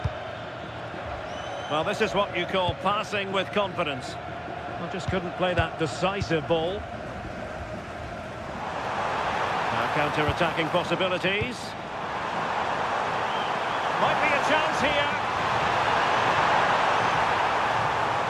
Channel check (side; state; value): both; identical; correlation 1.00